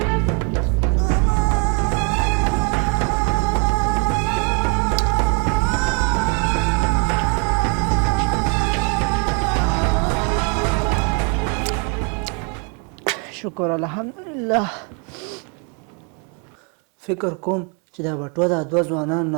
شکر الحمدلله فکر کوم چې دا بټوه دا دوه ځوانانو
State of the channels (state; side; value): quieter; left; 36.4 dB